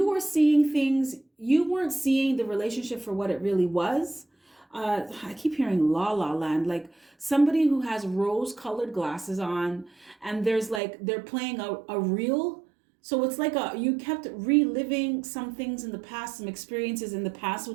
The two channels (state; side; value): drops out; left; at 10.8 s